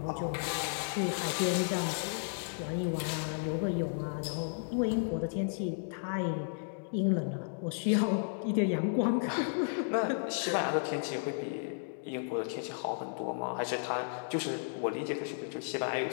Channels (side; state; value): right; silent; digital silence